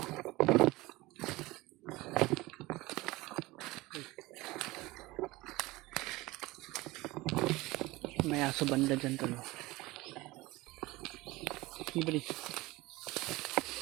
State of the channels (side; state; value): left; quieter; 20.6 dB